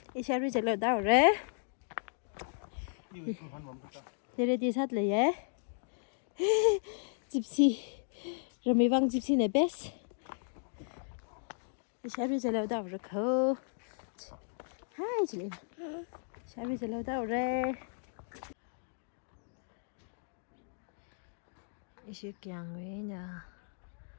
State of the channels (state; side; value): silent; right; digital silence